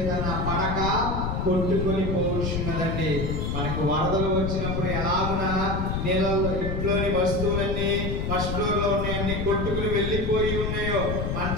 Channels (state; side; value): noise; left; rumble, 1 dB below the sound